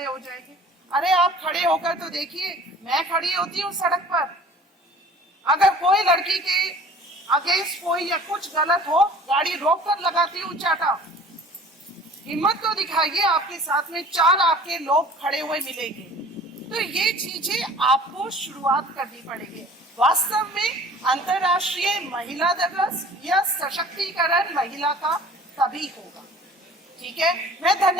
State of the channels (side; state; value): both; normal; correlation 0.46